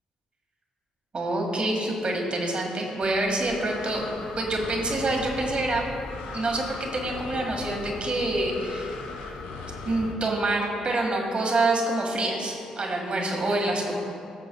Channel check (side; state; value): both; normal; correlation 0.75